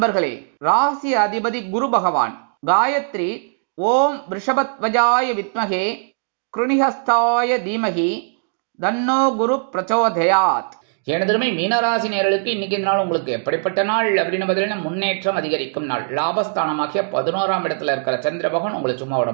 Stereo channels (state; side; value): silent; left; digital silence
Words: ராசி அதிபதி குரு பகவான். காயத்ரி ஓம் ரிஷபத்வஜாய வித்மகே கிருணிஹஸ்தாய தீமகி தன்னோ குரு பிரச்சோதயாத். எனதருமை மீனராசி நேயர்களுக்கு இன்னைக்கு இந்த நாள் உங்களுக்கு எப்படிப்பட்ட நாள் அப்படின்னு பார்த்தீங்கன்னா, முன்னேற்றம் அதிகரிக்கும் நாள். லாபஸ்தானமாகிய 11ஆம் இடத்துல இருக்கிற சந்திர பகவான் உங்களை சும்மா விட